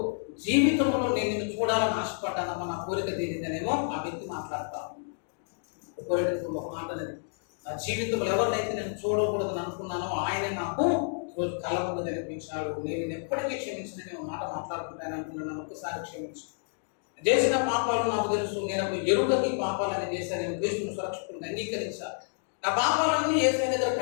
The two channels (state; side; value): silent; right; digital silence